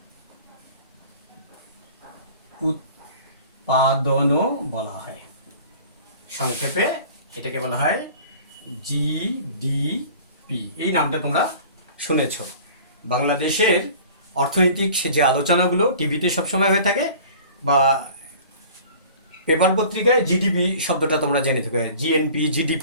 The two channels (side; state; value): both; inverted; correlation -0.45